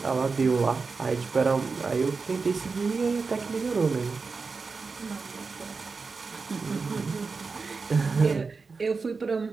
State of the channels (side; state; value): left; quieter; 4.5 dB